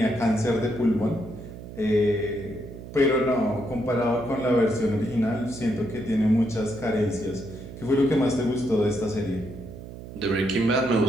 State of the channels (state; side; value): noise; right; hum, 13 dB below the sound